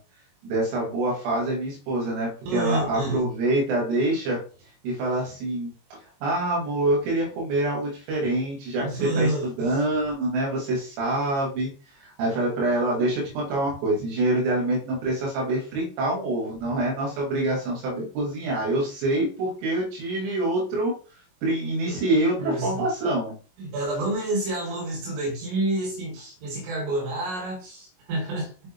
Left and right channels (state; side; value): late; left; 22 ms